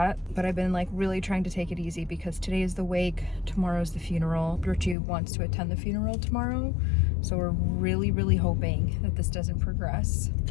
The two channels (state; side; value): drops out; right; at 5.0 s